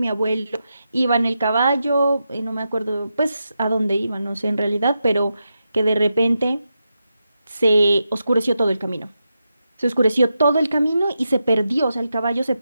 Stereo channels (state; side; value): inverted; both; correlation -0.87